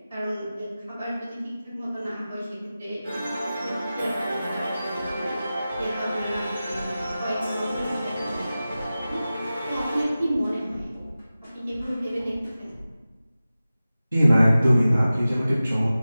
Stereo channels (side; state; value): both; inverted; correlation -0.95